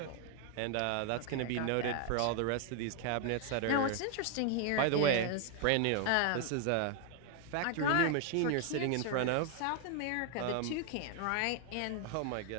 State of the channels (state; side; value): different; both; correlation 0.00